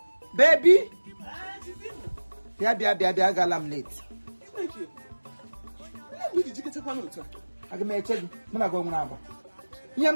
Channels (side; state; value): both; inverted; correlation -1.00